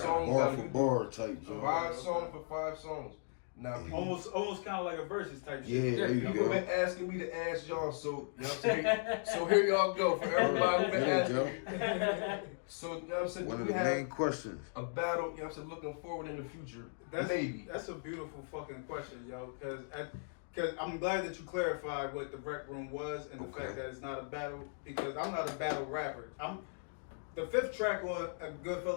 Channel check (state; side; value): silent; right; digital silence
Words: bar battle. for bar type joint. 5 songs for 5 songs. Now almost kind of like a versus type yeah, shit. there you people go. been asking me to ask y'all, so you know what I'm saying. So here y'all go for everybody who been asking. So you know what I'm saying. One of we the have main questions. a battle, you know what I'm saying, looking forward in the future. Maybe. That's a beautiful fucking question, yo. Because I'm glad that you clarified what the rec room was and the fact that it's not a battle. Because I'm not a battle rapper. The 5th track on